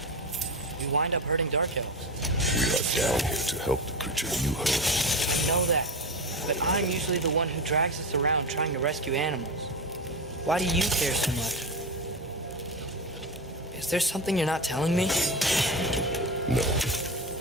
we wind up hurting Dark Elves? We are down here to help the creature you hurt. I know that, but I'm usually the one who drags us around trying to rescue animals. Why do you care so much? Is there something you're not telling me? No.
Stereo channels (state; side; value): normal; both; correlation 0.21